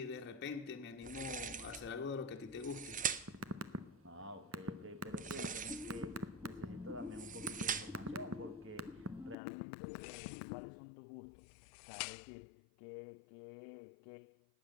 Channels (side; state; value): right; drops out; at 9.3 s